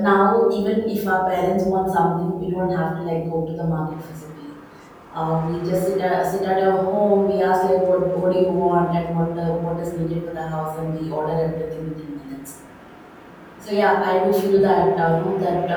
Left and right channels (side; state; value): both; identical; correlation 1.00